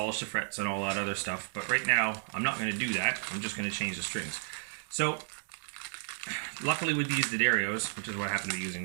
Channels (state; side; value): silent; left; 56 dB below the other